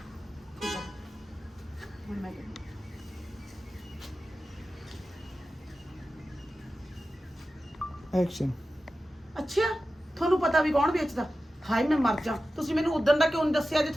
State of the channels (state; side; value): normal; both; correlation 0.93